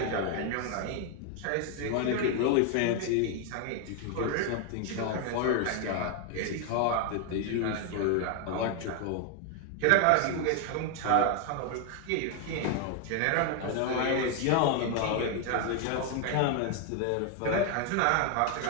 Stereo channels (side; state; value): both; different; correlation 0.01